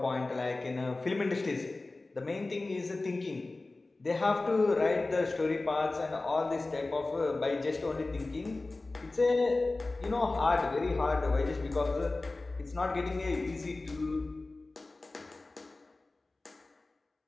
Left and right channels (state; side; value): quieter; right; 3.2 dB